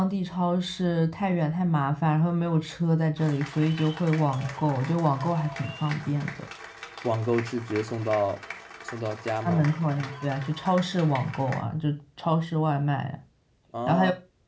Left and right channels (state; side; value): identical; both; correlation 1.00